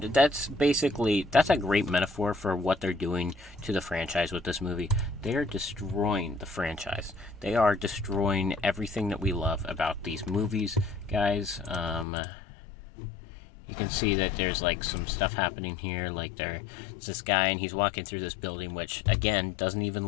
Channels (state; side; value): drops out; right; at 12.1 s